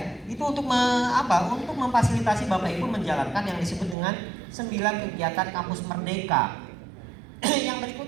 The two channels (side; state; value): left; drops out; at 4.0 s